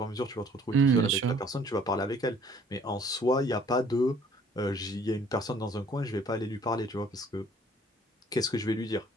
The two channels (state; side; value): normal; both; correlation 0.57